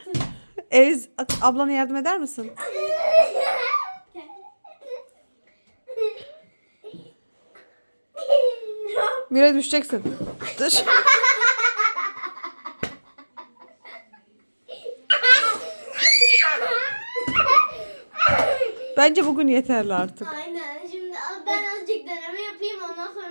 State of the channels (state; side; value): inverted; both; correlation -1.00